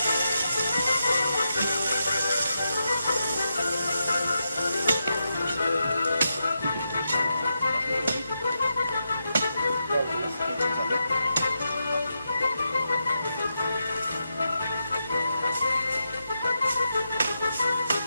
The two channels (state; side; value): inverted; both; correlation -0.86